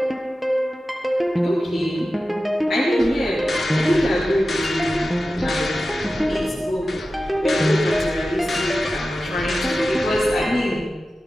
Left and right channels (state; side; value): normal; both; correlation 0.94